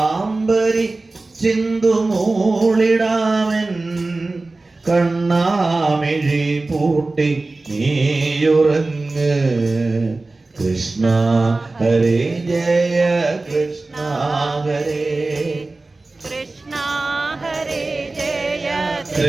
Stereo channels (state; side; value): quieter; left; 3.3 dB